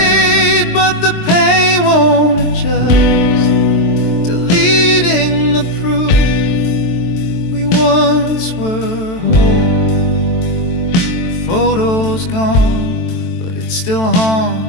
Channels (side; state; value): right; late; 23 ms